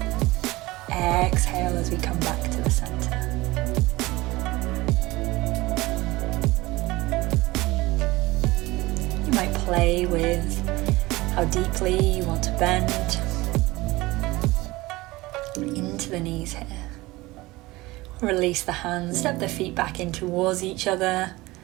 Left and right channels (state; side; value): quieter; left; 20.4 dB